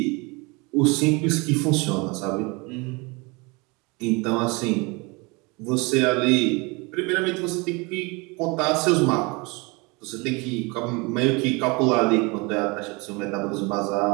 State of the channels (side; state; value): left; quieter; 27.5 dB